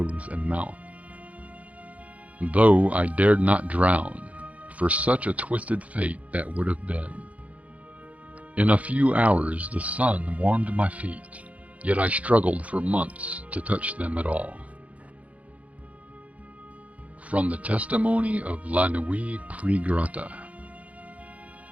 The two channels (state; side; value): late; left; 0.067 ms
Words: and mouth. Though I dared not drown, for such a twisted fate that would have been. In a few hours the sun warmed my feet, yet I struggled for months to touch them at all. From the testimony of La Nuit Pregrata.